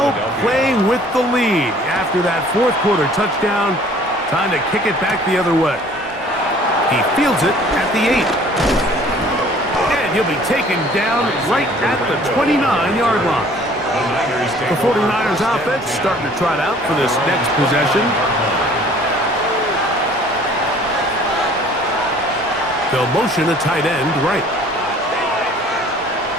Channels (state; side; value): normal; both; correlation 0.53